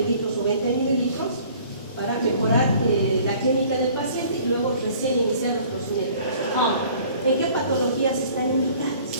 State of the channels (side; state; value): both; inverted; correlation -0.53